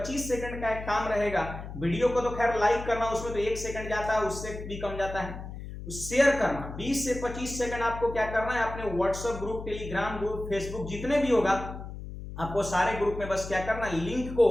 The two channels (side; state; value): left; noise; hum, 10 dB below the sound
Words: सेकंड का एक काम रहेगा। वीडियो को तो खैर लाइक करना, उसमें तो 1 सेकंड जाता है, उससे भी कम जाता है। शेयर करना 20 से 25 सेकंड आपको क्या करना है, अपने WhatsApp group, Telegram group, Facebook जितने भी होगा आपको सारे ग्रुप में बस क्या करना है, लिंक को